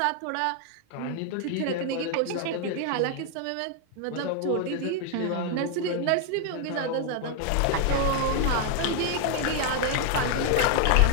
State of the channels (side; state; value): both; different; correlation 0.00